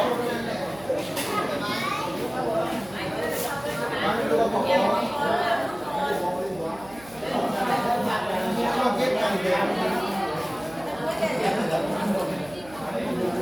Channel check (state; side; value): noise; right; hum, 21 dB below the sound